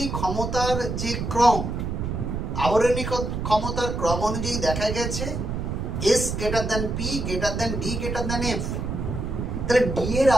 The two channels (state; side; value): noise; right; rumble, 3 dB below the sound